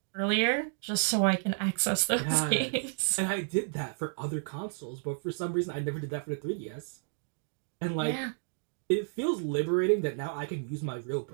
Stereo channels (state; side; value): silent; left; digital silence